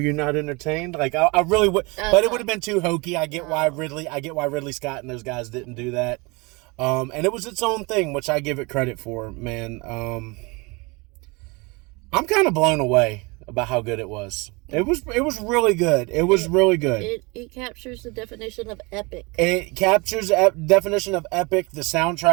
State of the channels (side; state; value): left; quieter; 27.0 dB